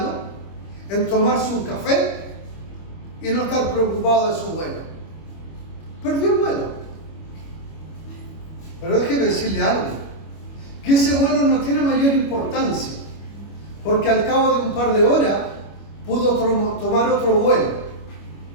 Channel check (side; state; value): right; late; 25 ms